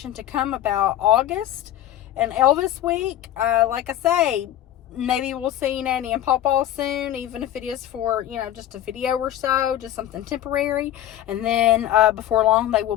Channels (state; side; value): quieter; right; 12.3 dB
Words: to come about August and Elvis week. Like I say, maybe we'll see Nanny and Pawpaw soon, even if it is for, you know, just a video or so, just something temporary. And then before long, they will